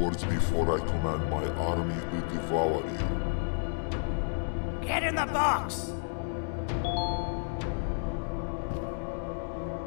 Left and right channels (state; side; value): silent; right; digital silence